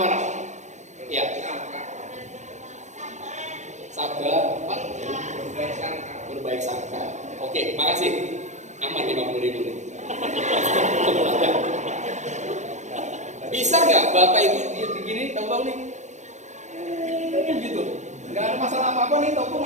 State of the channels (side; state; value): left; late; 0.34 ms